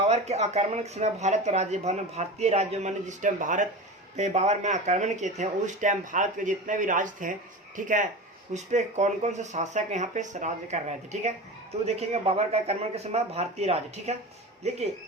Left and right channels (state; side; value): normal; both; correlation 0.29